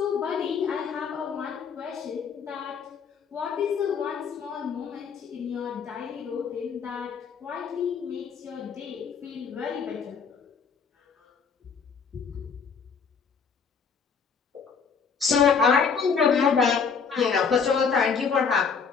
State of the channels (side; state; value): right; quieter; 6.0 dB